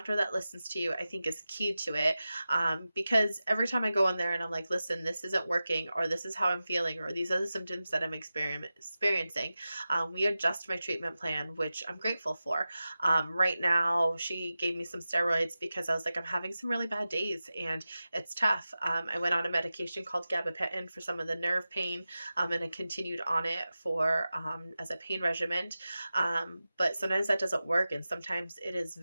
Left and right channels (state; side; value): inverted; both; correlation -0.94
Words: that listens to you, I think is key to it. Because every time I go in there and I'm like, listen, this isn't working, or this is how I'm feeling, or these are the symptoms that I'm experiencing, we adjust my treatment plan, which I'm grateful for. Right now, she gave me some steroids because I was like, I'm having some really bad days and it's tough. I went on a medication called gabapentin for some of the nerve pain, and I continued on it for as a pain regimen. But sometimes that doesn't work, and sometimes it is